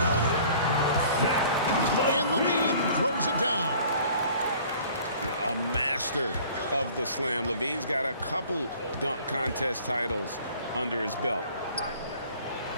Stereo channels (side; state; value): both; inverted; correlation -0.51